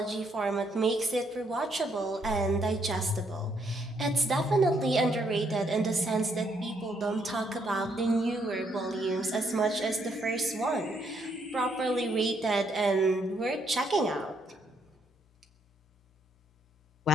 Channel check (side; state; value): both; normal; correlation 0.73